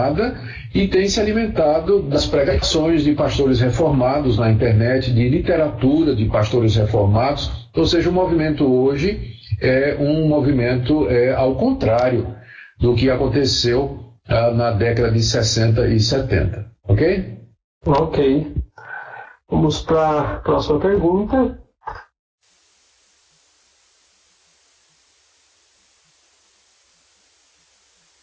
e tem se alimentado das pregações de pastores reformados na internet, de literatura de pastores reformados. Ou seja, o movimento hoje é um movimento ao contrário do que aconteceu na década de 60 e 70. Ok? Ok. Vamos para a próxima pergunta.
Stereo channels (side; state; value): both; identical; correlation 1.00